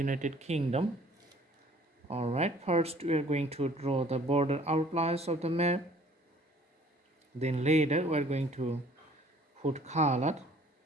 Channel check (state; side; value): normal; both; correlation 0.55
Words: Kingdom. Alright, first we are going to draw the border outlines of the map. Then later we are going to put color